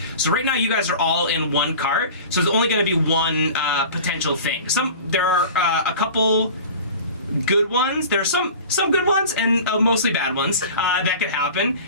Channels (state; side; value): inverted; both; correlation -0.38